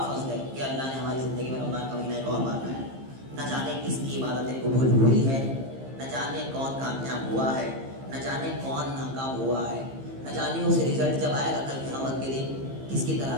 فضل ہے کہ اللہ نے ہماری زندگی میں رمضان کا مہینہ ایک اور بار لایا. نہ جانے کس کی عبادتیں قبول ہوئی ہے, نہ جانے کون کامیاب ہوا ہے, نہ جانے کون ناکام ہوا ہے, نہ جانے اس رزلٹ جب آئے گا کل قیامت کے دن کس کی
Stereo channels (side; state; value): left; late; 15 ms